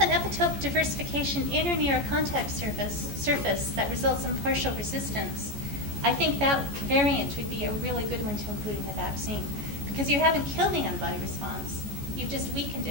an epitope diversification in or near a contact surface that results in partial resistance, I think that variant would be a really good one to include in the vaccine, because you haven't killed the antibody response, you've just weakened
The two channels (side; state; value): left; late; 14 ms